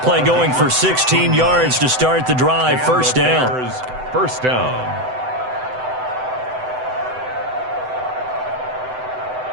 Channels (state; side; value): late; left; 7.9 ms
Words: play going for 16 yards to start the drive. 1st down. 1st down.